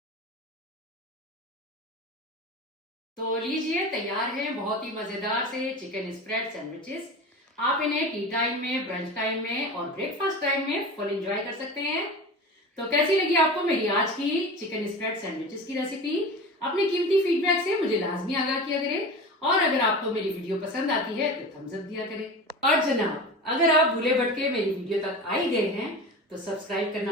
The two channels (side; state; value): both; normal; correlation 0.31